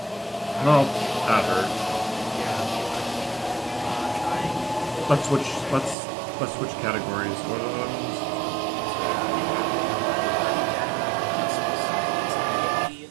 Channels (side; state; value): left; drops out; at 6.0 s